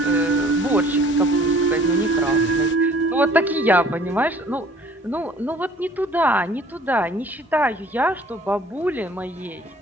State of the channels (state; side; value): normal; both; correlation 0.53